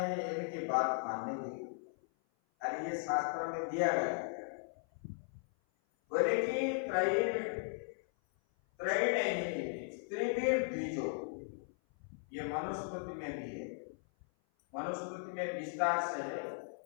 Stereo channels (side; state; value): right; silent; 53 dB below the other